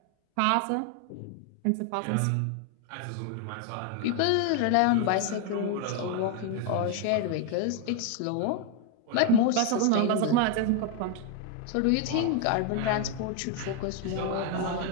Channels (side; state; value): both; different; correlation 0.00